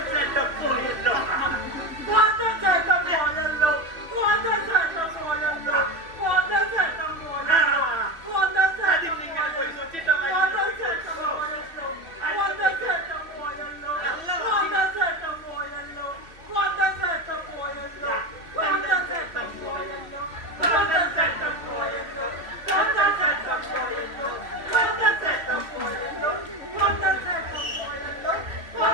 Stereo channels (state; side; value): late; left; 3.2 ms